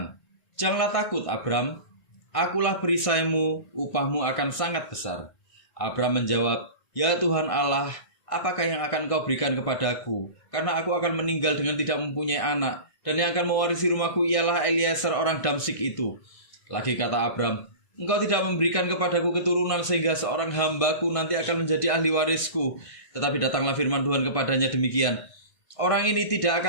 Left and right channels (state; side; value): late; right; 1.6 ms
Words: Janganlah takut Abram, akulah perisaimu, upahmu akan sangat besar. Abram menjawab, ya Tuhan Allah, apakah yang akan kau berikan kepadaku? Karena aku akan meninggal dengan tidak mempunyai anak, dan yang akan mewarisi rumahku ialah Eliezer orang Damsyik itu. Lagi kata Abram, engkau tidak memberikan kepadaku keturunan sehingga seorang hambaku nanti akan menjadi ahli warisku. Tetapi datanglah firman Tuhan kepadanya demikian, orang ini tidak